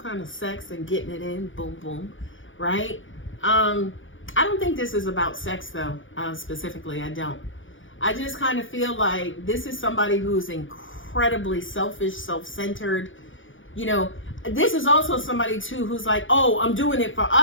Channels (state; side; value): late; right; 0.57 ms